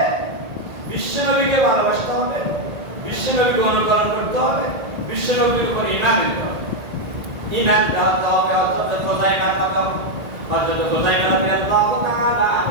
বিশ্বনবীকে ভালোবাসতে হবে বিশ্বনবীকে অনুকরণ করতে হবে বিশ্বনবীর উপর ঈমান আনতে হবে ঈমান রাখতে হবে হযরত খুযাইমা রাদিয়াল্লাহু তাআলা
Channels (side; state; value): left; late; 1.9 ms